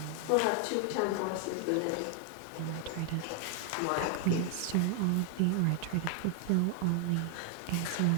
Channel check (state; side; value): different; both; correlation 0.00